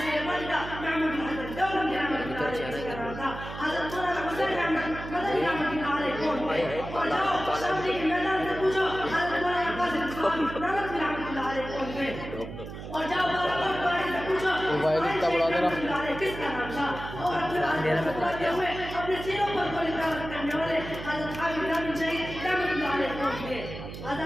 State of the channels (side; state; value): right; noise; hum, 10 dB below the sound